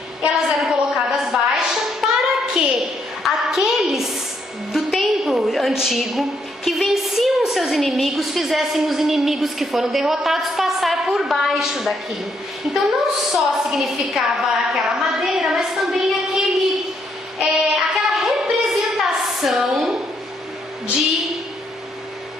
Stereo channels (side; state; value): both; normal; correlation 0.74